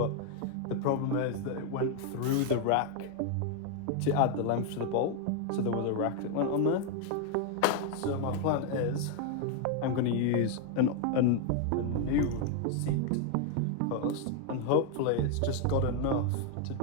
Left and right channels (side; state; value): both; different; correlation 0.01